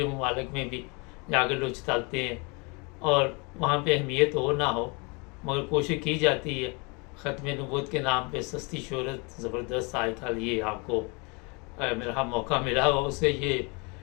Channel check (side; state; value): right; quieter; 30.4 dB